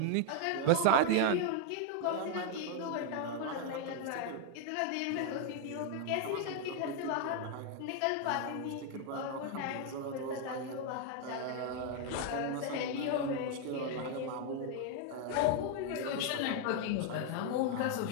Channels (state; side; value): different; both; correlation 0.01